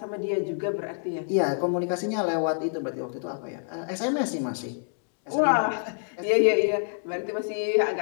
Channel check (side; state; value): right; silent; digital silence